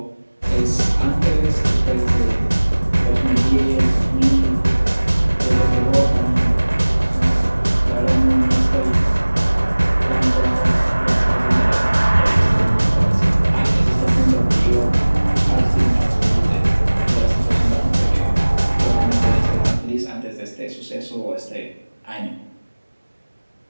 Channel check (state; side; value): inverted; both; correlation -1.00